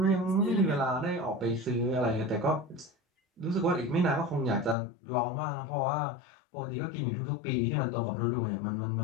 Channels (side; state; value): right; drops out; at 4.8 s